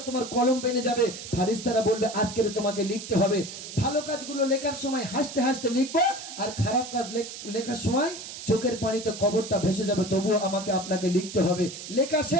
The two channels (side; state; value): right; noise; hiss, 11 dB below the sound